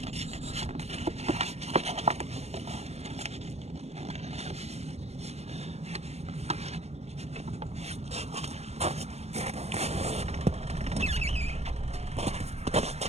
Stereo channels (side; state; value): left; late; 0.31 ms